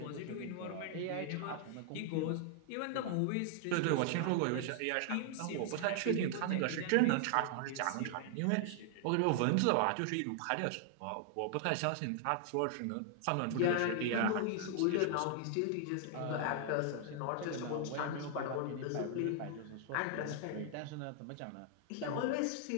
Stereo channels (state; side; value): different; both; correlation 0.00